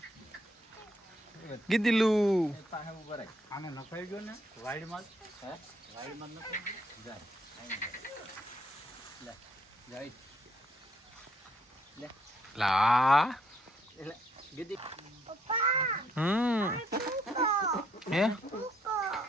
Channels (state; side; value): normal; both; correlation 0.70